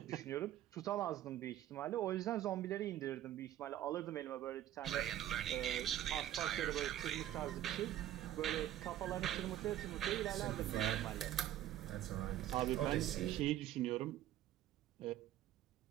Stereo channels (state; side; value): quieter; left; 12.5 dB